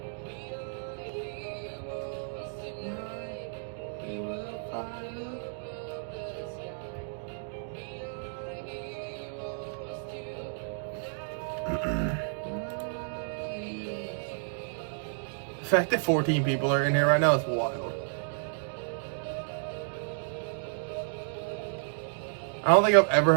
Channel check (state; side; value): silent; left; digital silence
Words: The fact that 14 people are in here right now is wild. I don't think I've ever